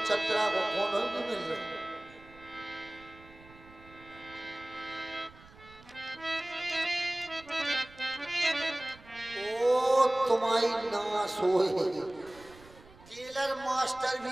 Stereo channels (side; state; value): right; noise; rumble, 23 dB below the sound